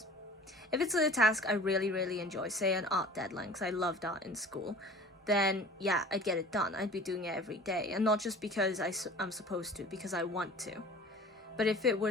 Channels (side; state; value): both; normal; correlation 0.44